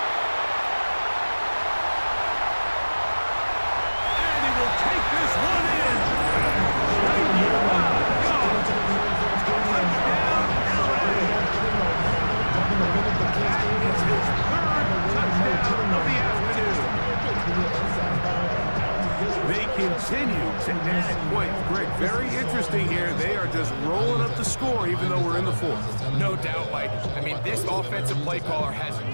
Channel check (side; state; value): both; inverted; correlation -1.00